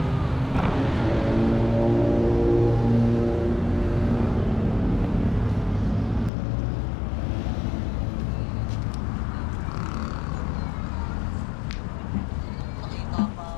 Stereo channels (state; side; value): drops out; right; at 6.3 s